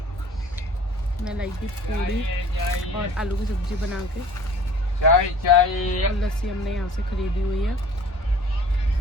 मैं लाई थी पूड़ी और आलू की सब्जी बना के। चाय और लस्सी हमने यहाँ से खरीदी हुई है।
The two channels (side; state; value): both; normal; correlation 0.48